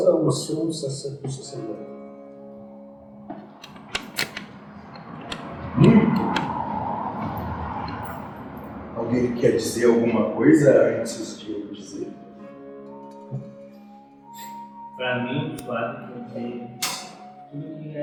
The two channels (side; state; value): both; identical; correlation 1.00